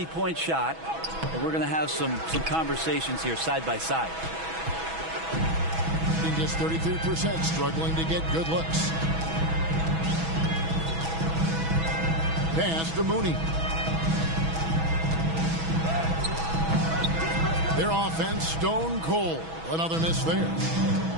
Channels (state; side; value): late; left; 6.1 ms